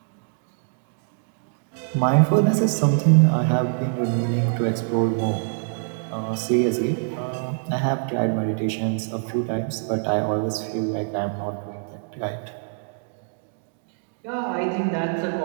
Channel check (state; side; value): silent; left; digital silence